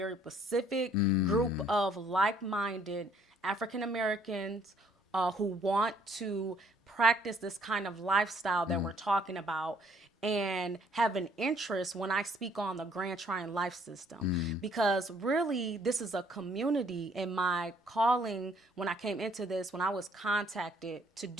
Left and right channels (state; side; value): normal; both; correlation 0.63